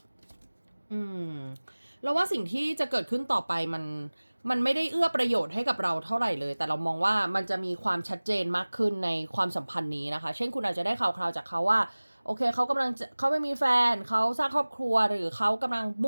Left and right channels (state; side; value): inverted; both; correlation -1.00